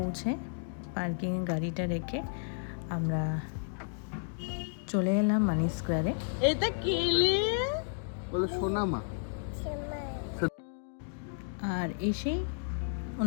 পার্কিংয়ে গাড়িটা রেখে আমরা চলে এলাম মানি স্কোয়ারে। এটা কেলে বলো সোনামা। আর এসেই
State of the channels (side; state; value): right; silent; digital silence